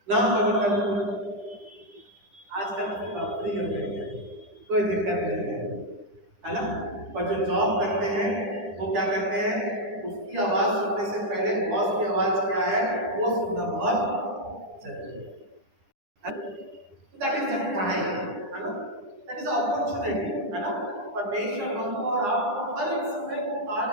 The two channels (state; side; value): late; left; 9.9 ms